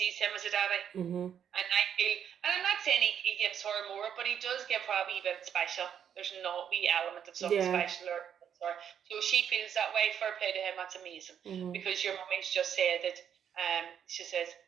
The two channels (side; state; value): left; quieter; 8.7 dB